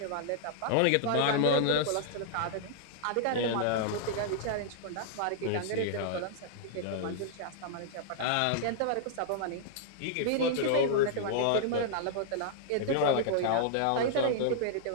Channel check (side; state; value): both; different; correlation -0.01